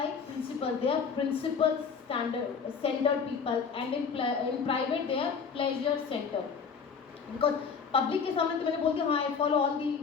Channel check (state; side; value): quieter; right; 5.9 dB